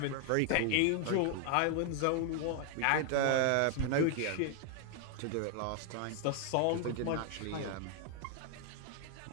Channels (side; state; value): both; different; correlation 0.00